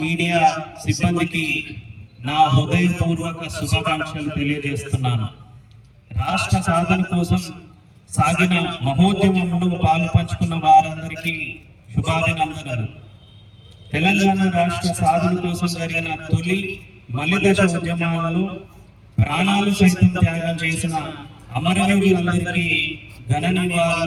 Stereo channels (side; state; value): both; identical; correlation 1.00